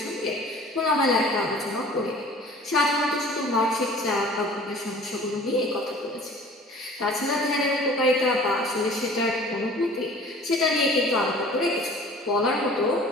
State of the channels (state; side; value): normal; both; correlation 0.47